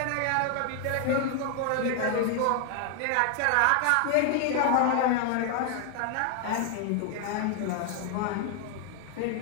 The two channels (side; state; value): both; different; correlation 0.00